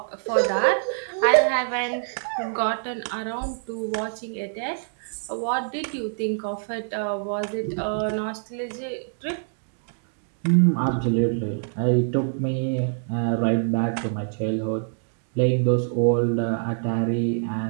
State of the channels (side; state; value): left; silent; 62 dB below the other